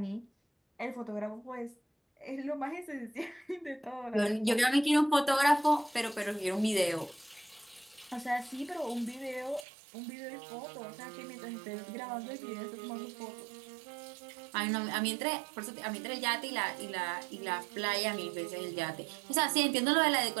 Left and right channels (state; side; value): drops out; left; at 9.7 s